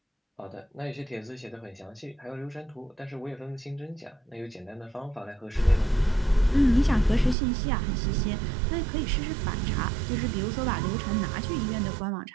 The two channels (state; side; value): drops out; left; at 7.4 s